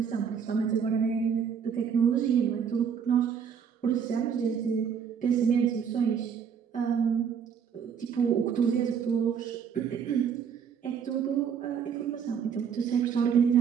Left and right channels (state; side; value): quieter; left; 7.2 dB